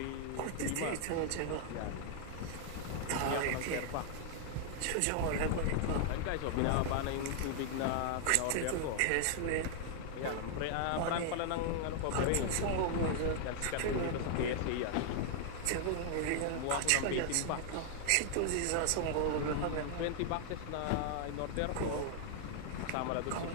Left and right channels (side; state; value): both; different; correlation 0.00